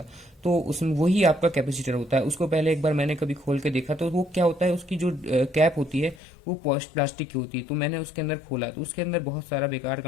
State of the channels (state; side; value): drops out; right; at 6.2 s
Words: तो उसमें वही आपका कैपेसिटर होता है। उसको पहले एक बार मैंने कभी खोल के देखा, तो वो क्या होता है, उसकी जो कैप होती है वो प्लास्टिक की होती है। तो मैंने उसके अंदर खोला तो उसके अंदर बहुत सारा बेकार